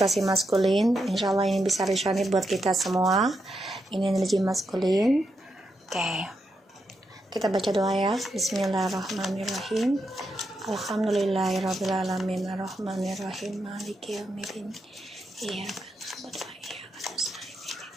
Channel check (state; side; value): normal; both; correlation 0.83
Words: maskulin. Insya Allah ini bisa resonate buat kita semua. Ini energi maskulin. Oke, kita baca doa ya. Bismillahirrahmanirrahim. Alhamdulillahirrahmanirrahim. Ar-Rahmanirrahim. Maliki yaumiddin. Iya kan.